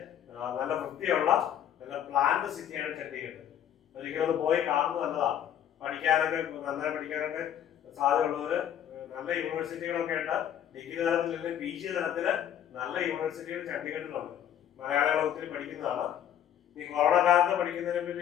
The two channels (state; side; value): quieter; right; 10.0 dB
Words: നല്ല വൃത്തിയുള്ള നല്ല പ്ലാൻഡ് സിറ്റിയാണ് ചണ്ഡീഗഡ്. ഒരിക്കലും പോയി കാണുന്നത് നല്ലതാണ്. പഠിക്കാനൊക്കെ നന്നായി പഠിക്കാനൊക്കെ സാധ്യതയുള്ളവര് നല്ല യൂണിവേഴ്സിറ്റികളൊക്കെ ഉണ്ട്. ഡിഗ്രി തലത്തിൽ PG തലത്തില് നല്ല യൂണിവേഴ്സിറ്റികൾ ചണ്ഡീഗഡിലുണ്ട്. മലയാളികൾ ഒത്തിരി പഠിക്കുന്നതാണ്. ഈ കൊറോണ കാലത്ത് പഠിക്കുന്നതിനെ